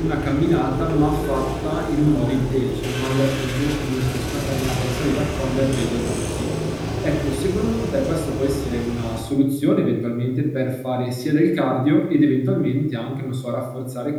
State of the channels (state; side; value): identical; both; correlation 1.00